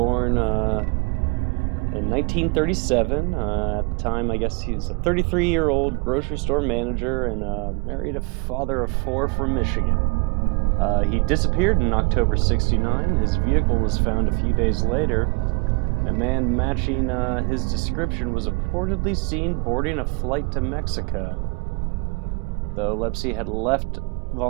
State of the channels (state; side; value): quieter; left; 30.1 dB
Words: in 1937. At the time, I guess he's a 33-year-old grocery store manager and married a father of 4 from Michigan. He disappeared in October '69. His vehicle was found a few days later. A man matching his description was reportedly seen boarding a flight to Mexico, though Lipsey had left